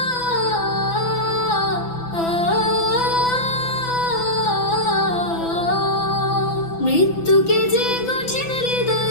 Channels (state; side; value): late; right; 6.0 ms